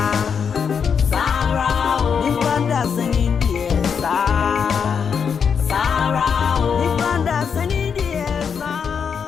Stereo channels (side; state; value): right; quieter; 6.7 dB